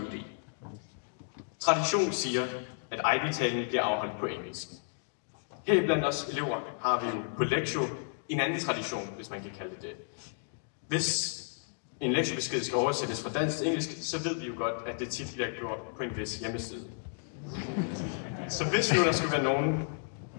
Tradition siger, at IB-talen bliver afholdt på engelsk. Her blandt os elever har vi jo på lektio en anden tradition, hvis man kan kalde det det. Hvis en lektiebesked skal oversættes fra dansk til engelsk, så ved vi jo godt, at det tit bliver gjort på en vis hjemmeside. Så hvis nu der skulle være nogen,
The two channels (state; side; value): silent; right; digital silence